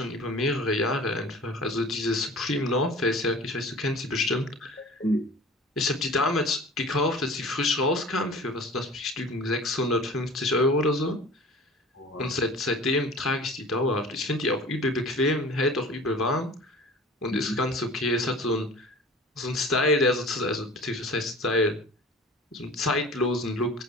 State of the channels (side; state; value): both; normal; correlation 0.42